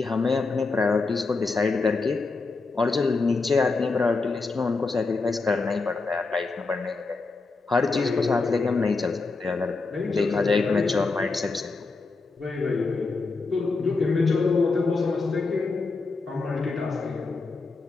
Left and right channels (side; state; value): right; quieter; 3.9 dB